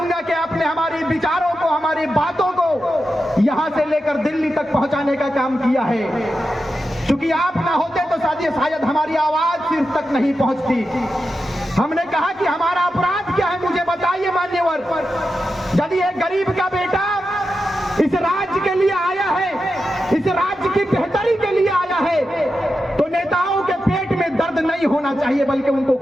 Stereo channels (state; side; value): normal; both; correlation 0.90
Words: कि आपने हमारी विचारों को, हमारी बातों को यहाँ से लेकर दिल्ली तक पहुंचाने का काम किया है। क्योंकि आप ना होते तो शायद हमारी आवाज सिर तक नहीं पहुंचती। हमने कहा कि हमारा अपराध क्या है, मुझे बताइए मान्यवर। यदि एक गरीब का बेटा इस राज्य के लिए आया है, इस राज्य की बेहतरी के लिए आया है, तो नेताओं के पेट में दर्द नहीं होना चाहिए, बल्कि उनको